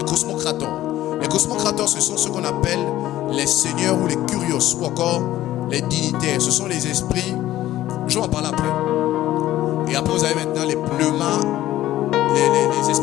cosmocrateurs. Les cosmocrateurs, ce sont ce qu'on appelle les seigneurs ou les curios, ou encore les dignitaires. Ce sont les esprits, je vais en parler après. Et après, vous avez maintenant les pneumas, les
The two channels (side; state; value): right; quieter; 14.4 dB